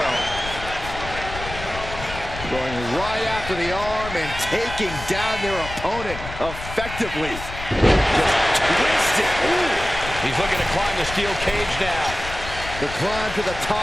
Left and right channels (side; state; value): left; noise; rumble, 10 dB below the sound